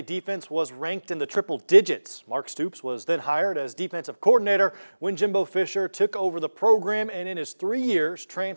defense was ranked in the triple digits. Mark Stoops was then hired as defensive coordinator when Jimbo Fisher took over the program, and in his 3 years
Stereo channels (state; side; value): inverted; both; correlation -1.00